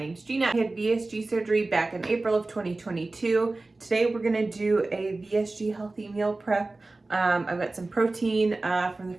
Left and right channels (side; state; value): left; quieter; 3.2 dB